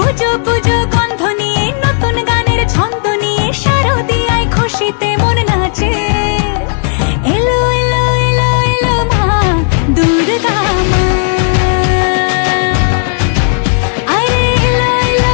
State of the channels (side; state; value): right; silent; digital silence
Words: পুজো গন্ধ নিয়ে নতুন গানের ছন্দ নিয়ে শারদীয়